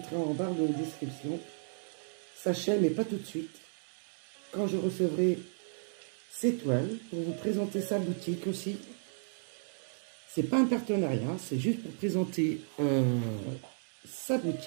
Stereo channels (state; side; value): silent; left; digital silence